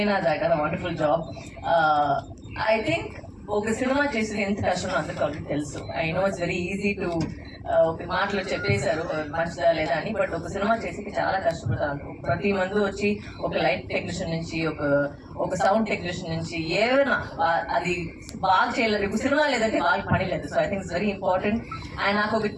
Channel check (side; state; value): both; identical; correlation 1.00